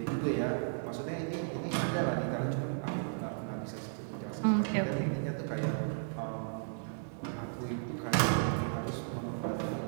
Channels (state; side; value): silent; left; digital silence